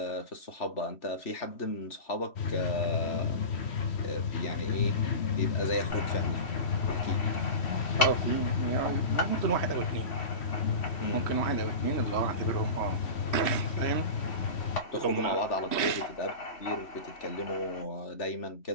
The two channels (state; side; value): late; right; 3.1 ms